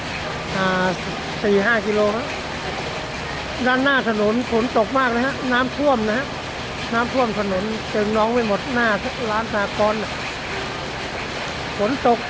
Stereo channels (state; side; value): identical; both; correlation 1.00